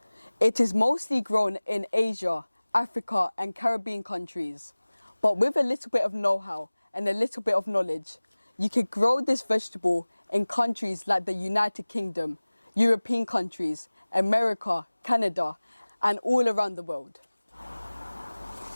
It is mostly grown in Asia, Africa and Caribbean countries. But with a little bit of know-how and a little bit of knowledge, you can grow this vegetable in countries like the United Kingdom, European countries, America, Canada, and all around the world.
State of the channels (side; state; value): both; inverted; correlation -1.00